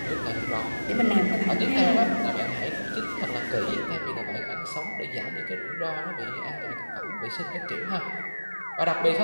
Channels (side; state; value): both; inverted; correlation -1.00